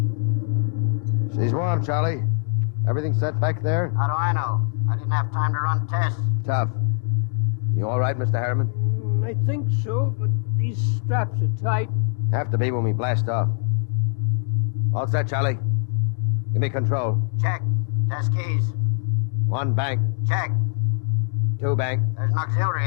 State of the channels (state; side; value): silent; right; 56 dB below the other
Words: She's warm, Charlie. Everything set back there? How do I know? I didn't have time to run tests. Tough. You all right, Mr. Harriman? I think so, but these straps are tight. Have to be when we blast off. All set, Charlie. Give me control. Check. Test keys. 1 bank. Check. 2 bank. There's an auxiliary